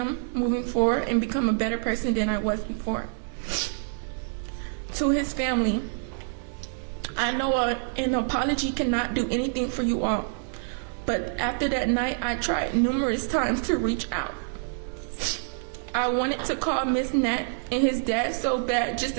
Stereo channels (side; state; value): left; silent; digital silence